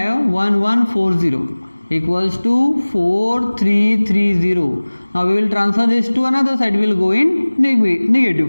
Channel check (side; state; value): both; inverted; correlation -1.00